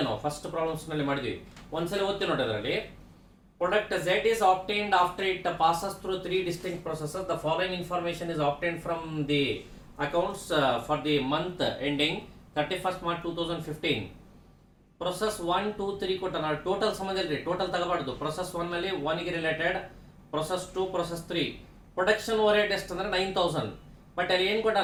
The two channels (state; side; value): identical; both; correlation 1.00